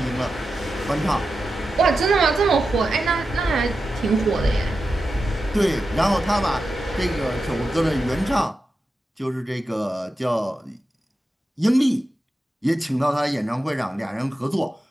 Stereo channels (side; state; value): both; normal; correlation 0.91